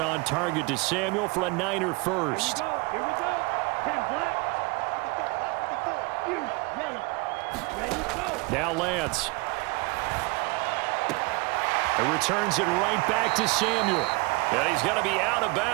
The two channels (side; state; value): left; quieter; 27.2 dB